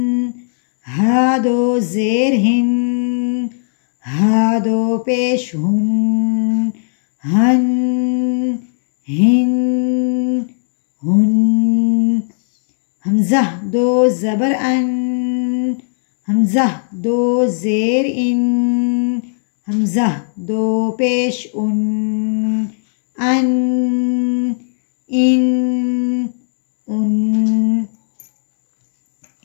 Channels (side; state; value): right; silent; digital silence